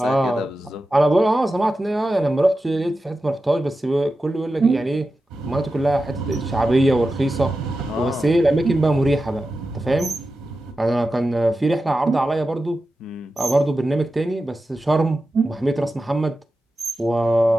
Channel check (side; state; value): both; normal; correlation 0.92